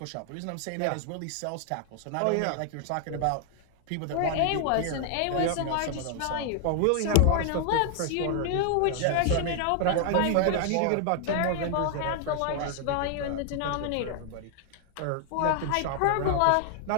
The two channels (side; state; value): both; different; correlation 0.00